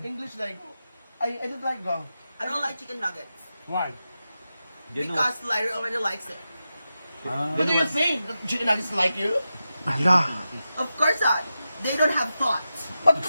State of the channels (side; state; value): both; inverted; correlation -0.90